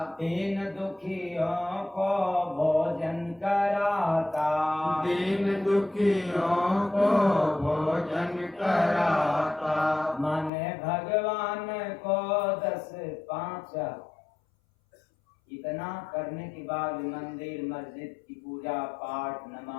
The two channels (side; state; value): right; drops out; at 10.5 s